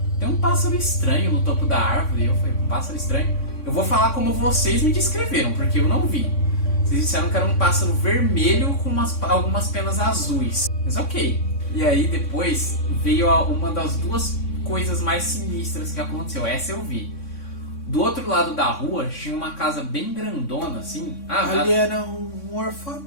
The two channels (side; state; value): right; late; 3.6 ms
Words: Tem um pássaro estranho no topo da árvore. E eu falei, um pássaro estranho? Eu vou falar como vocês me descreveram, porque eu não vi. Vocês disseram que era um pássaro vermelho com algumas penas azuis. Mas ok. E aí depois veio uma das duas coisas mais sinistras que aconteceu. Essa eu vi. Do outro lado da rua tinha uma casa bem grandona, assim. Ali era um